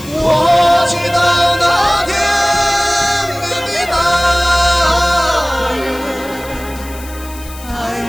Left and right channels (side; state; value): left; noise; hiss, 18 dB below the sound